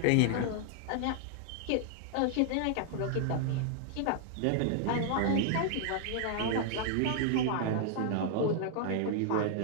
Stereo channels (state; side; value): different; both; correlation 0.00